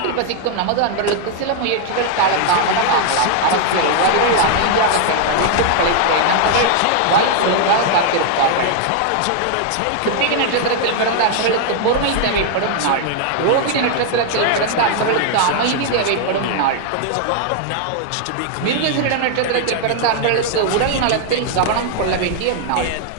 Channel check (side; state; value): both; different; correlation 0.00